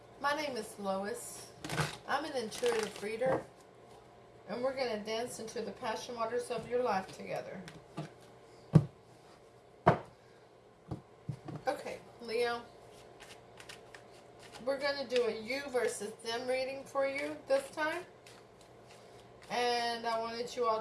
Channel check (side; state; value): both; identical; correlation 1.00